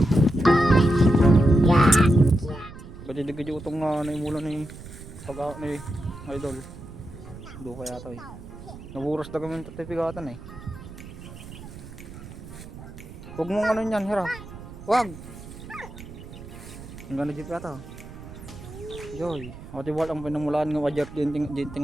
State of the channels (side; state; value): right; noise; rumble, 14 dB below the sound